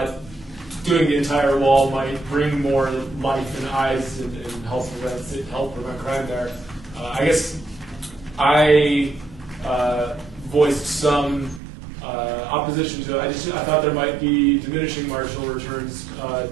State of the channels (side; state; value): left; drops out; at 11.6 s